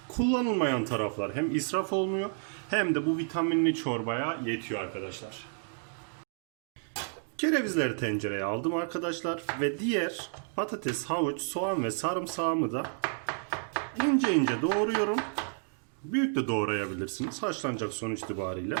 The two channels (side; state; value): left; silent; 57 dB below the other